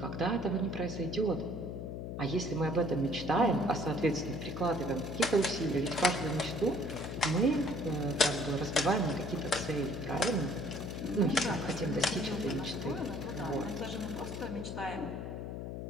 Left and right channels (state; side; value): noise; left; hum, 6 dB below the sound